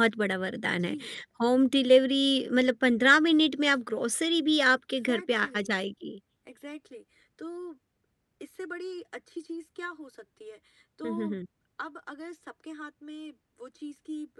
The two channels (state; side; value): identical; both; correlation 1.00